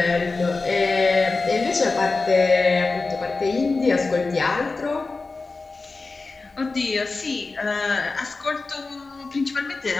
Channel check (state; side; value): quieter; right; 3.8 dB